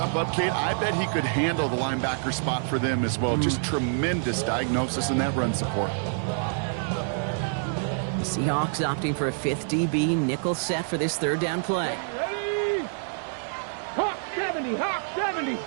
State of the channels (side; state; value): left; silent; digital silence